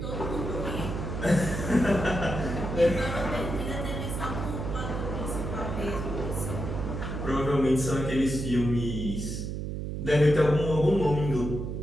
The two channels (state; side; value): noise; right; hum, 4 dB below the sound